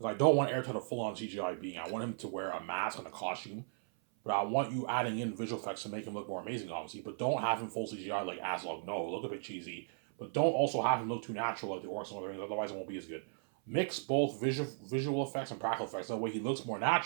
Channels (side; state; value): left; silent; 54 dB below the other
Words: I don't want Aerotet a full-on CGI being. I want him to wear a mask and a costume, but I want you adding in visual effects to make him look more amazing, obviously. But don't have him full CGI like Aslog. No, look a bit cheesy. But don't also have him look too natural like the orcs and other things. Otherwise, it won't be as good. Mix both visual effects and practical effects. That way, he looks more